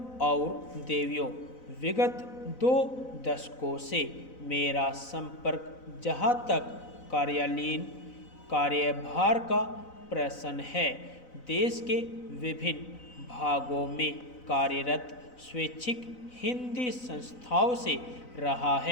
और देवियों, विगत 2 दशकों से मेरा संपर्क जहाँ तक कार्यालयीन कार्यभार का प्रश्न है, देश के विभिन्न भागों में कार्यरत स्वैच्छिक हिंदी संस्थाओं से रहा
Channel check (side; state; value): right; late; 4.0 ms